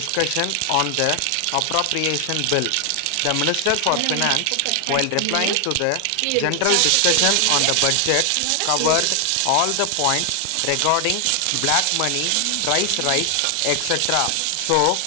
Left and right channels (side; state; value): both; different; correlation 0.00